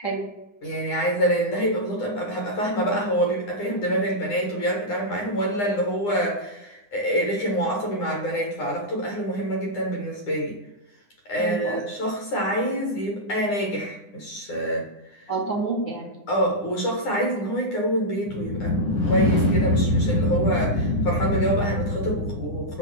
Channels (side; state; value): right; late; 9.8 ms